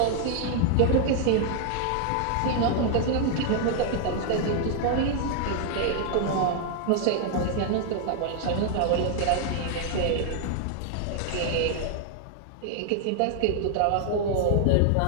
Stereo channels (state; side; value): different; both; correlation 0.00